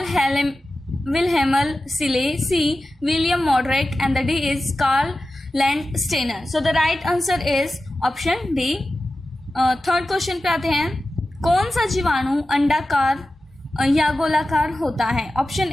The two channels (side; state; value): both; normal; correlation 0.94